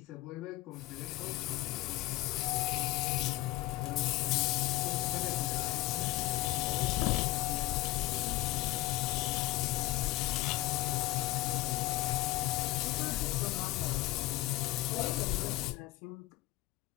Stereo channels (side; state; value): right; quieter; 17.7 dB